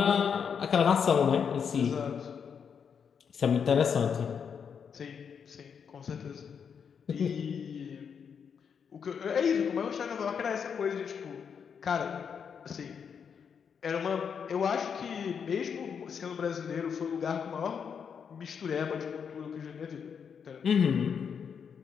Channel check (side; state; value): right; quieter; 6.9 dB